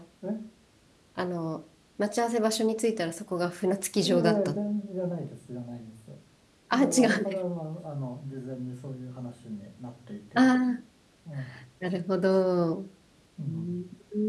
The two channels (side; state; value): both; identical; correlation 1.00